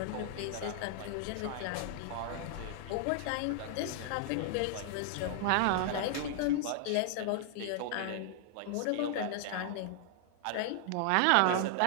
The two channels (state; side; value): different; both; correlation -0.01